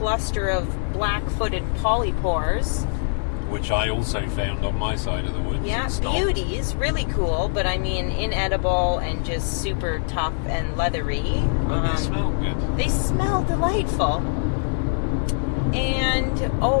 of black-footed polypores, which I also found on my side of the woods. Yeah, beauties, really cool, but I mean inedible and just super tough and leathery. But they smell good. They smell delightful. And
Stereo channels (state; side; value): silent; right; digital silence